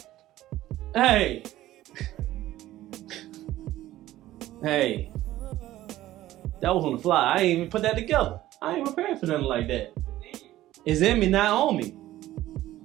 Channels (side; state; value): left; quieter; 15.0 dB